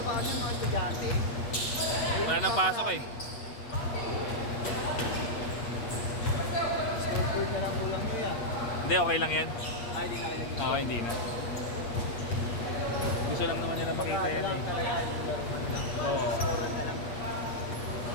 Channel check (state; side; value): late; right; 8.4 ms